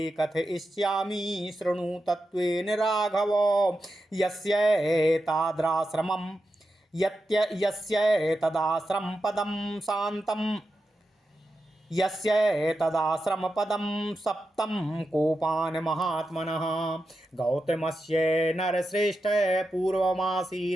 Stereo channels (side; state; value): both; normal; correlation 0.89